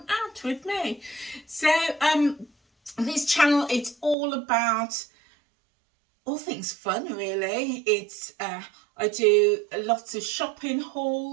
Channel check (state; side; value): drops out; left; at 4.2 s